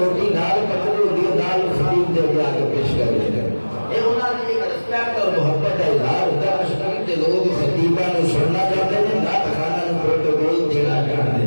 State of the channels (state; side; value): inverted; both; correlation -1.00